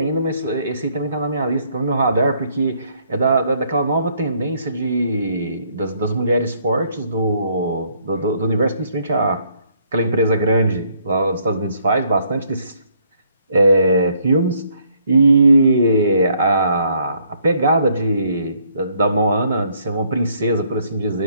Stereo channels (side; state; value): both; inverted; correlation -0.68